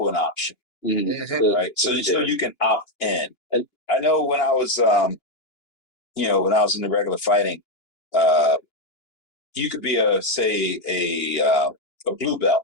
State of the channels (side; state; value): right; late; 2.9 ms